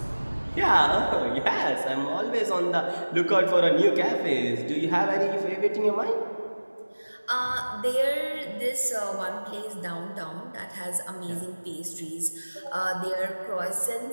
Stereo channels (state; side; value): inverted; both; correlation -1.00